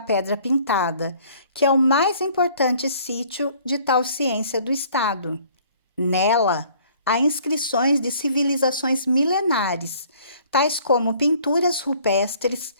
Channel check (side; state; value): both; inverted; correlation -0.56